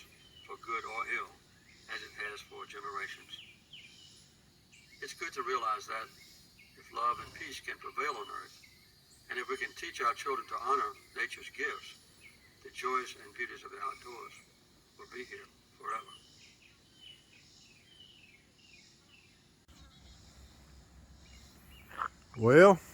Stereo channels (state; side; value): identical; both; correlation 1.00